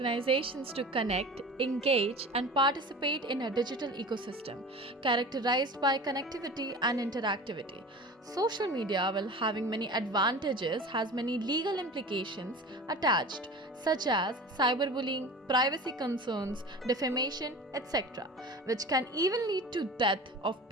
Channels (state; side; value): normal; both; correlation 0.36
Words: to connect, engage, and participate in a digital ecosystem characterized by connectivity and interactivity. Social media, while having many advantages, has many legal implications attached, such as cyberbullying, privacy concerns, defamation, etc., which can even lead to death of